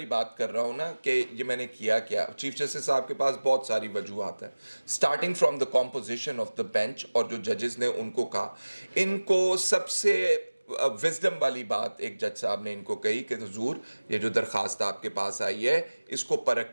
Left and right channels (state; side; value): inverted; both; correlation -1.00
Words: بات کر رہا ہوں نا کہ یہ میں نے کیا, چیف جسٹس صاحب کے پاس بہت ساری وجوہات ہیں, starting from the composition of the bench, اور جو ججز نے ان کو کہا, ان کو سب سے وزڈم والی بات ایک جج صاحب نے ان کو کہی کہ حضور یہ جو درخواست آپ کے پاس آئی ہے اس کو